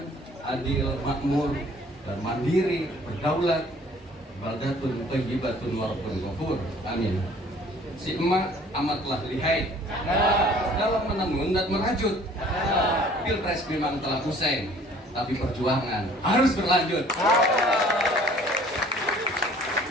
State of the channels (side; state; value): both; normal; correlation 0.54